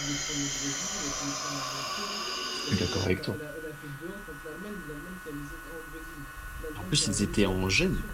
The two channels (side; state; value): both; identical; correlation 1.00